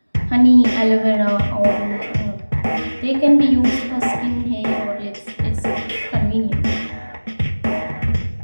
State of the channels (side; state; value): both; inverted; correlation -1.00